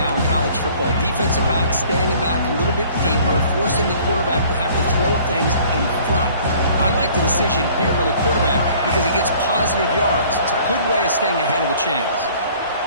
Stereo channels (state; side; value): inverted; both; correlation -0.53